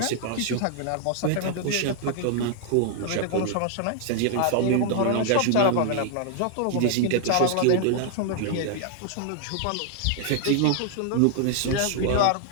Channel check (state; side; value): different; both; correlation 0.00